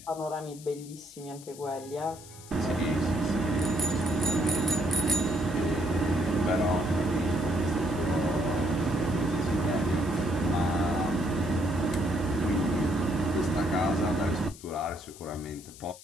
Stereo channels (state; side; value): noise; left; hiss, 18 dB below the sound